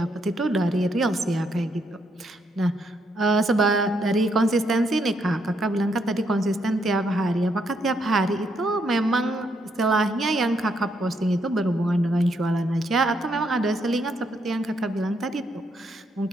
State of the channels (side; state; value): both; normal; correlation 0.75